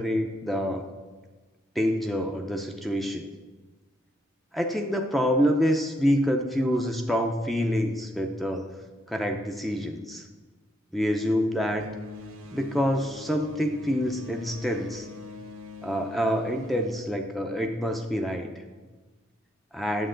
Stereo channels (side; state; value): both; normal; correlation 0.76